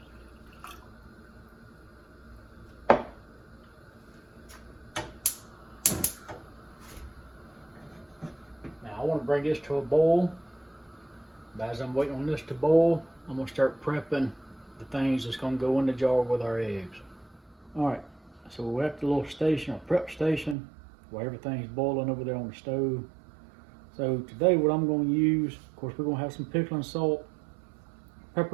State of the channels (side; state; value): left; drops out; at 20.6 s